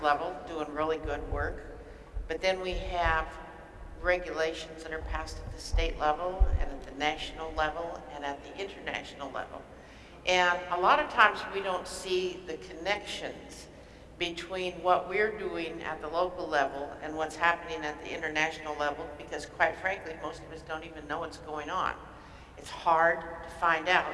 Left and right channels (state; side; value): identical; both; correlation 1.00